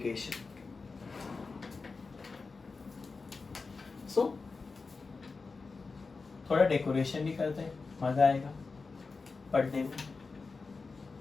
So थोड़ा डेकोरेशन भी करते हैं, मजा आएगा पढ़ने में।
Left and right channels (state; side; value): quieter; right; 4.3 dB